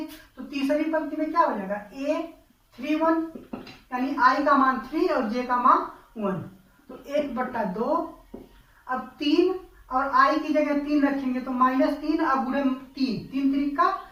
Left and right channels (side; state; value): both; identical; correlation 1.00